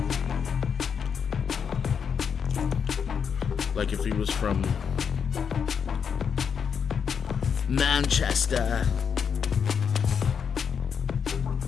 Like if he was from Manchester.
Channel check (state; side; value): quieter; right; 6.9 dB